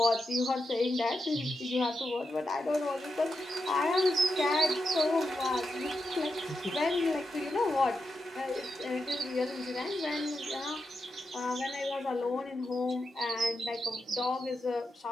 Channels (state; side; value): normal; both; correlation 0.87